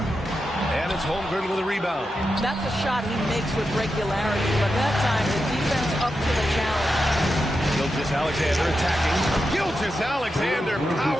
And it's Holmgren with a rebound. That's a shot he makes with regularity, but that time the defense up to the challenge. Gilgeous-Alexander attacking. Gilgeous-Alexander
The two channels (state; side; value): normal; both; correlation 0.88